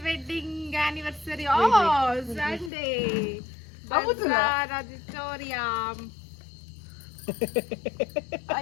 wedding anniversary Sunday bazaar auditorium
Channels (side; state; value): right; drops out; at 2.7 s